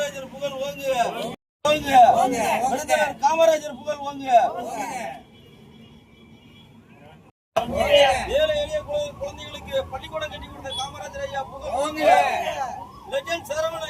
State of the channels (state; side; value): identical; both; correlation 1.00